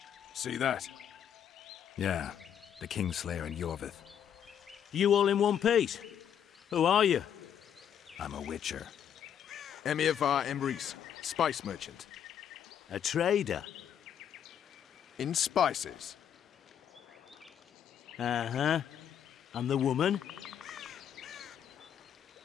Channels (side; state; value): right; quieter; 9.0 dB